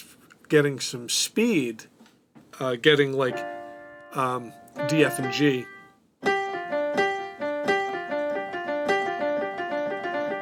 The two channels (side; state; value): both; identical; correlation 1.00